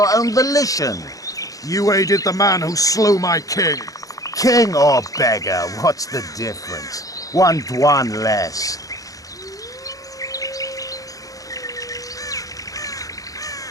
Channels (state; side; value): late; right; 0.17 ms